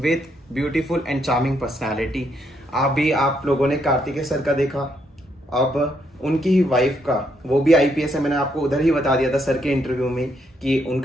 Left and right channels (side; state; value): both; normal; correlation 0.75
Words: beautiful and charming personality. अभी आप लोगों ने Kartikeya sir का देखा, अब उनकी ही वाइफ का, वो भी आईपीएस है। मैंने आपको उधर ही बता दिया था सर के इंटरव्यू में कि